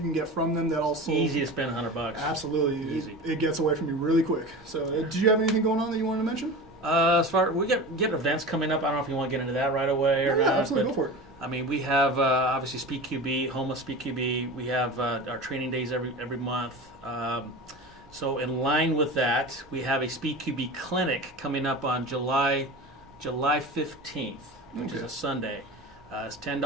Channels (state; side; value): normal; both; correlation 0.31